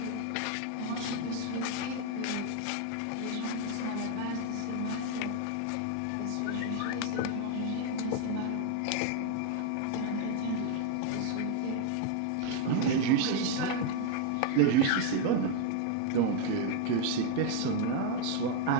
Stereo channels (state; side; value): different; both; correlation 0.00